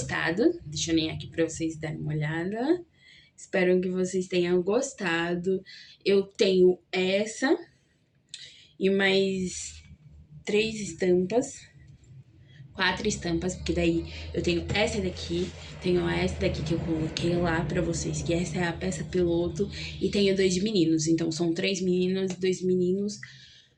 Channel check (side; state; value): both; identical; correlation 1.00